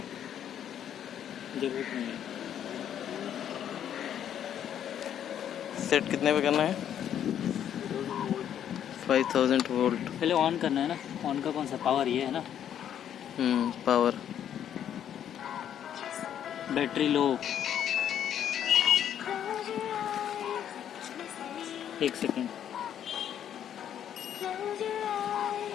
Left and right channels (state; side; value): quieter; right; 9.8 dB